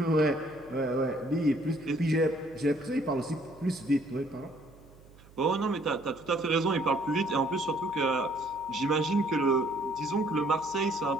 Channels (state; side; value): noise; right; hum, 24 dB below the sound